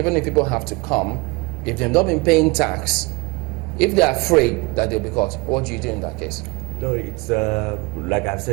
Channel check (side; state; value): left; quieter; 25.7 dB